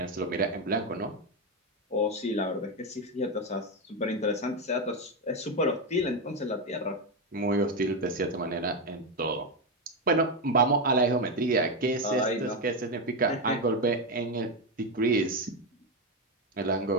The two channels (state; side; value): normal; both; correlation 0.09